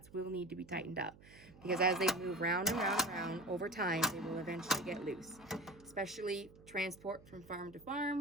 will need to be tightened up because as they move round and round and round over time, they will eventually get loose. Especially transport from farm to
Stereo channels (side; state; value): right; noise; hum, 22 dB below the sound